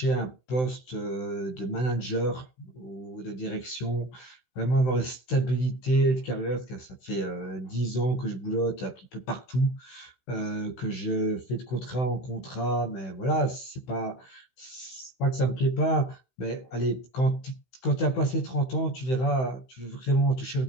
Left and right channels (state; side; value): late; right; 16 ms